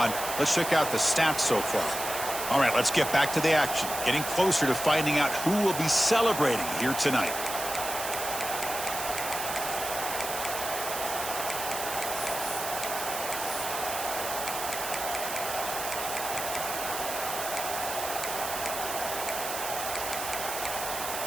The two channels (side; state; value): right; noise; hiss, 5 dB below the sound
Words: let's check out the stats so far. All right, let's get back to the action. Getting closer to finding out who will be celebrating here tonight.